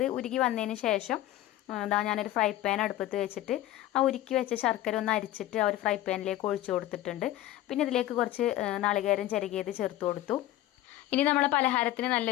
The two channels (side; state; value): right; quieter; 14.4 dB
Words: ഉരുകി വന്നതിന് ശേഷം ഇതാ ഞാനൊരു ഫ്രൈ പാൻ അടുപ്പത്ത് വെച്ചിട്ട് ആ ഉരുക്കി വെച്ച ശർക്കര ഒന്ന് അരിച്ചിട്ട് ആ ഒരു ഫ്രൈ പാനിലേക്ക് ഒഴിച്ചു കൊടുത്തിട്ടുണ്ട്. പിന്നെ ഇതിലേക്ക് കുറച്ച് നാളികേരം ചിരകിയത് ചേർത്ത് കൊടുത്തു. ഇനി നമ്മളെ പലഹാരത്തിന്